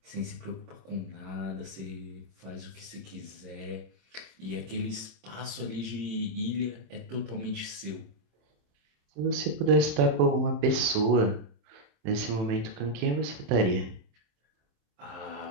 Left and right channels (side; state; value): left; late; 27 ms